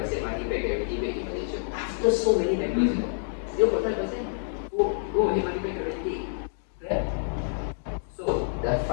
money back guarantee rate in Malaysia. After so many members, 0.5%. Go ahead, money back guarantee. Right? So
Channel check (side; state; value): right; silent; digital silence